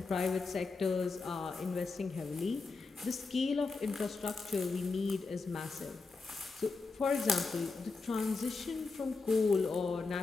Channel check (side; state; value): right; quieter; 4.0 dB